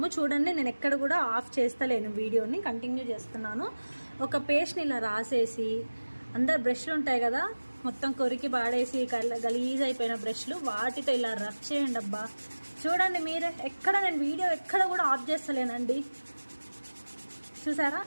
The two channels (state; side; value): inverted; both; correlation -1.00